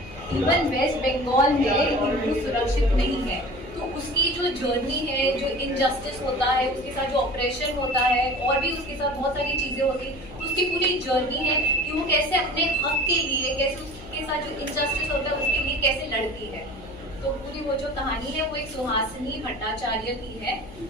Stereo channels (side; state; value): left; noise; hum, 17 dB below the sound